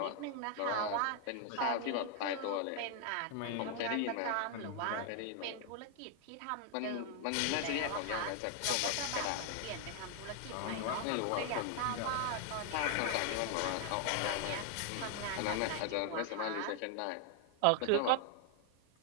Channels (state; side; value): different; both; correlation 0.00